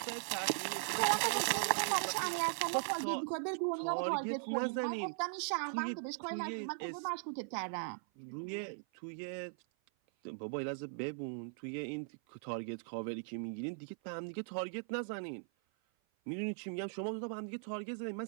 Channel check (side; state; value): left; silent; 52 dB below the other